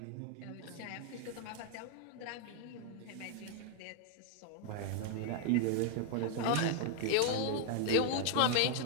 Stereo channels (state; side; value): different; both; correlation 0.00